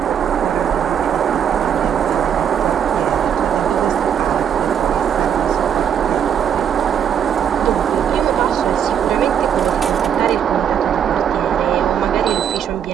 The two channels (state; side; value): quieter; left; 8.6 dB